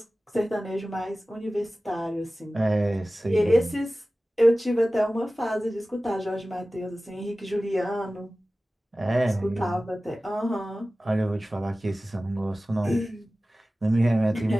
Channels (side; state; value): both; normal; correlation 0.96